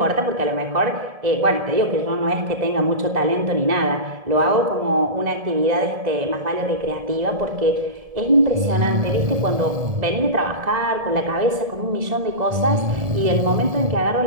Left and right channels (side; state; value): left; late; 1.7 ms